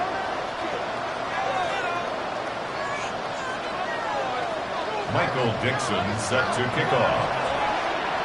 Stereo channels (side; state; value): both; identical; correlation 1.00